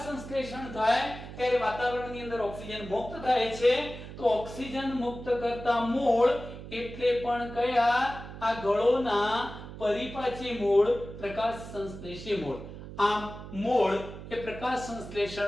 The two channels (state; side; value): noise; right; hum, 12 dB below the sound